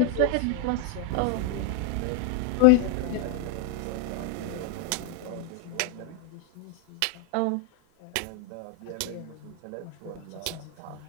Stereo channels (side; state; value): both; different; correlation 0.00